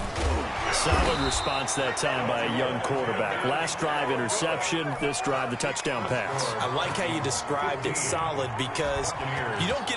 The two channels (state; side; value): identical; both; correlation 1.00